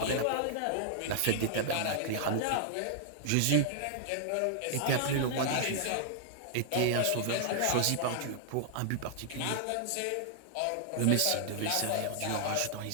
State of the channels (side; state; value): both; different; correlation -0.01